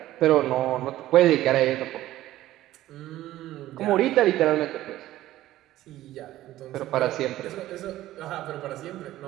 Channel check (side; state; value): left; quieter; 14.8 dB